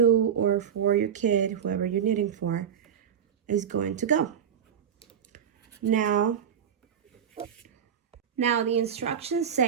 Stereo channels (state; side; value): quieter; left; 8.2 dB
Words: or for your kid, whoever you're knitting for, is going to go. Now the instructions